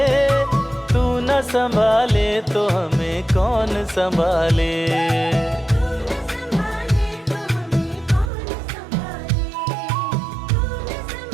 तू न संभाले तो हमें कौन संभाले।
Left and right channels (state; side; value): drops out; left; at 8.3 s